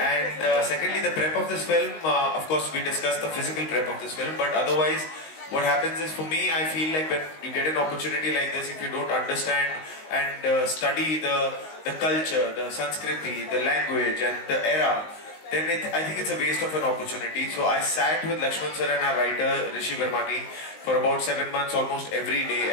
And secondly, the prep of this film, of course we discussed the physical prep of this film, but otherwise what happens is, for me, I feel like when you get an opportunity like this, if you don't understand and study the culture, the Sanskriti, the language and the era, then I think it's a waste of an opportunity. So I sat with Lakshman sir and our writer Rishi Vermani for about 7 months almost every day,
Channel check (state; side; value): late; right; 19 ms